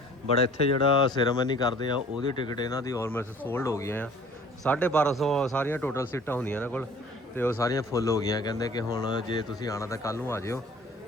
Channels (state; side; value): normal; both; correlation 0.50